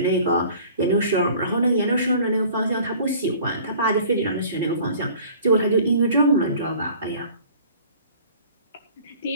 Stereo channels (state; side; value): inverted; both; correlation -0.49